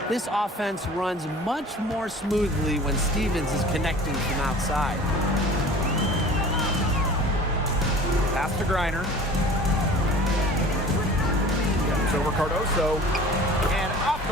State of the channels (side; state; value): both; normal; correlation 0.43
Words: This offense runs much more smoothly when Stevens is connecting from outside. Pass to Griner. Comes over Cardoso. And off